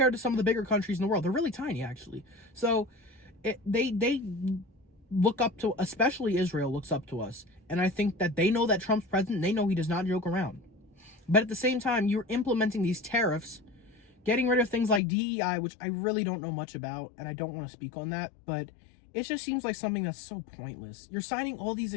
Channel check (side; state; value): right; drops out; at 15.0 s